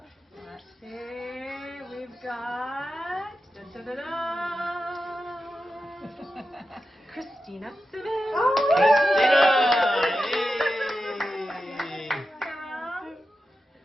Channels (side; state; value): both; normal; correlation 0.90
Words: Let's see, we've got Christina Simmons. Oh, Serum.